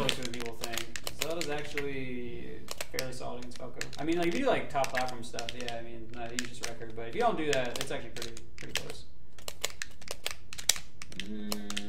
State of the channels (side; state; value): both; identical; correlation 1.00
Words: than people think. Zelda's actually fairly solid against Falco. I mean, like if you do like top platform stuff, yeah, I mean, you just wreck her. But if you don't do that, it's actually pretty close.